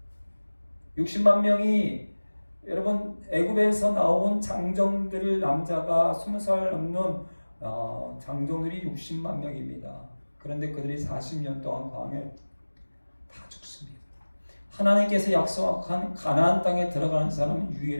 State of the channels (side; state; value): both; inverted; correlation -1.00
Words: 60만 명이 여러분 애굽에서 나온 장정들 남자가 20살 넘는 장정들이 60만 명입니다. 그런데 그들이 40년 동안 광야에 다 죽습니다. 하나님께서 약속한 가나안 땅에 들어가는 사람은